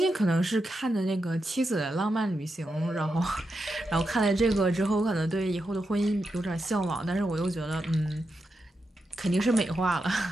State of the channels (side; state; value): both; normal; correlation 0.87